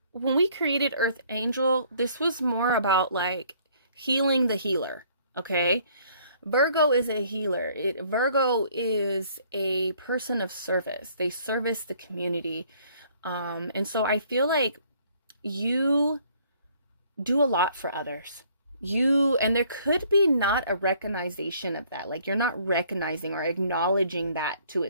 when we created Earth Angel, this was more about like healing the healer. Okay, Virgo is a healer. Virgo is a person of service. They service the community. And so I feel like you do a lot for others. And there could be not a recognition of that. Like you're not recognizing or acknowledging that to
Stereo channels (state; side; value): inverted; both; correlation -0.61